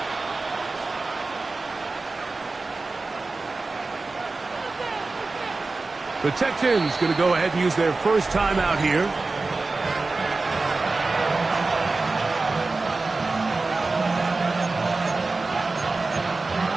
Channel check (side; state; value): left; quieter; 3.6 dB